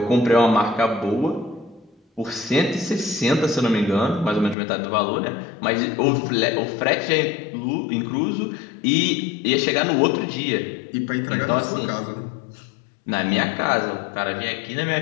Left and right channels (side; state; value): right; drops out; at 4.5 s